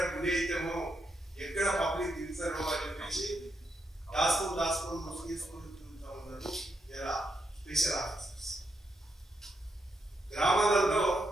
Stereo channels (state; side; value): normal; both; correlation 0.81